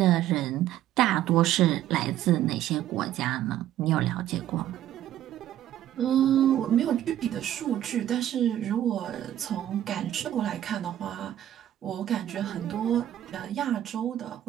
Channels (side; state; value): left; quieter; 12.1 dB